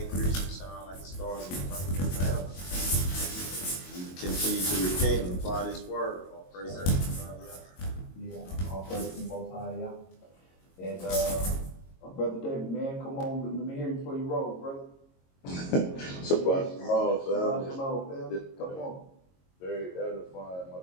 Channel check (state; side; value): late; right; 22 ms